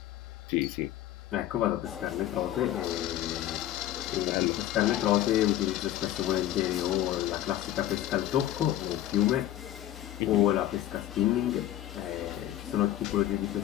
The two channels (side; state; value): right; quieter; 13.0 dB